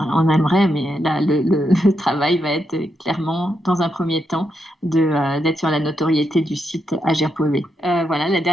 aimerait, mais là, le travail va être clairement, dans un premier temps, d'être sur la notoriété du site agir.be. Voilà, la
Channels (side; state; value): both; normal; correlation 0.82